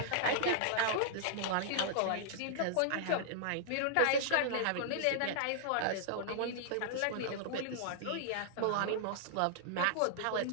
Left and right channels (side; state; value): both; different; correlation -0.01